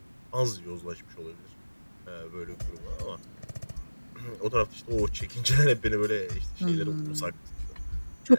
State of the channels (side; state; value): both; inverted; correlation -1.00